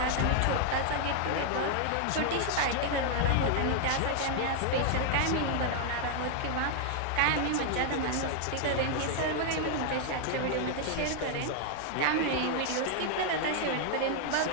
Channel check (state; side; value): different; both; correlation 0.00